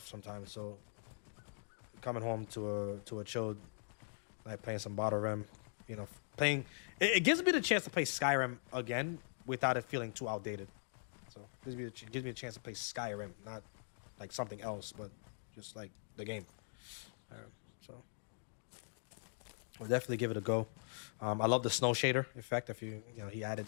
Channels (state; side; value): silent; right; digital silence